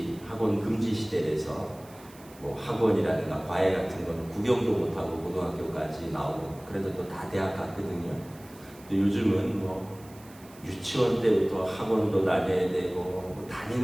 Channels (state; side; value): noise; right; hiss, 23 dB below the sound